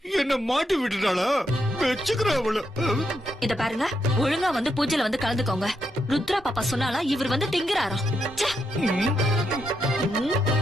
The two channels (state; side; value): normal; both; correlation 0.81